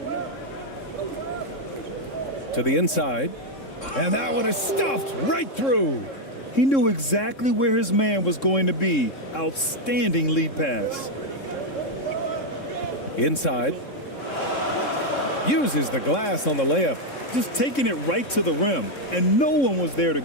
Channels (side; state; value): right; late; 3.7 ms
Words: To the inside. And that one is stuffed right through. He knew exactly where his man was going to be. Outstanding lead pass. Inside. Uses the glass on the layup. Just taking it right to the rim, and no one was there to